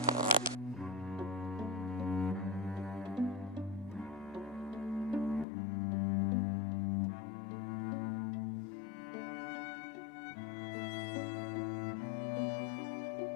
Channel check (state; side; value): drops out; right; at 5.5 s